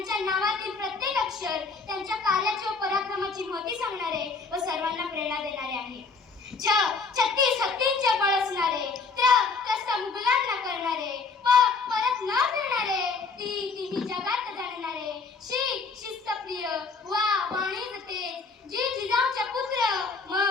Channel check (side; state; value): right; quieter; 4.5 dB